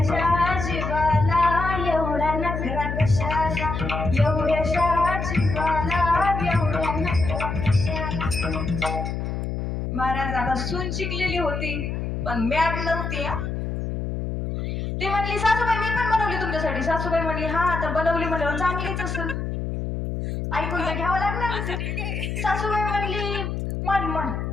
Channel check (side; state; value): left; noise; hum, 3 dB below the sound